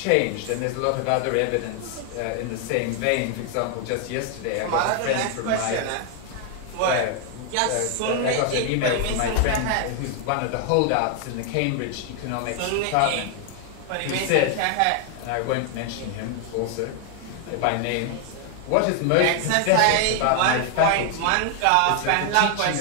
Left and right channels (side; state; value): both; different; correlation 0.00